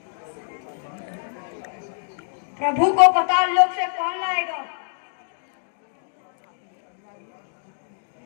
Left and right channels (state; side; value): silent; right; digital silence